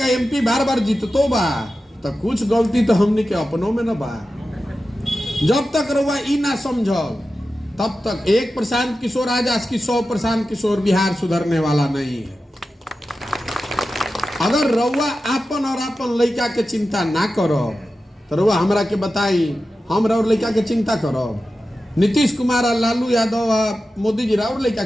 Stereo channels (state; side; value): normal; both; correlation 0.93